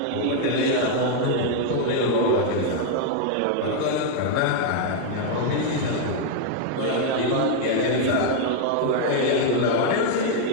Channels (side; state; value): both; different; correlation 0.00